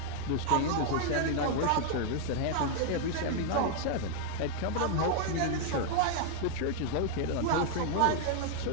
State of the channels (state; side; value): different; both; correlation 0.00